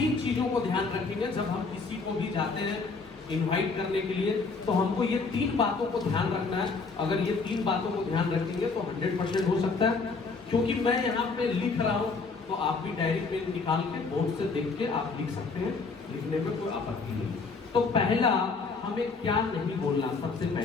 चीजों को ध्यान रखेंगे जब हम किसी को भी जाते हैं इनवाइट करने के लिए। तो हमको ये 3 बातों को ध्यान रखना है। अगर ये 3 बातों को ध्यान रखेंगे तो 100% हो सकता है। क्योंकि मैं यहाँ पे लिख रहा हूँ तो आप भी डायरी पेन निकाल के बोर्ड से देख के आप लिख सकते हैं, लिखने में कोई आपत्ति नहीं। तो पहला हमें क्या नहीं बोलना, सबसे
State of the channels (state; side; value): quieter; right; 4.4 dB